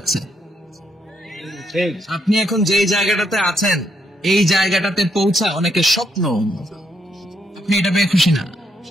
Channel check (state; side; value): normal; both; correlation 0.76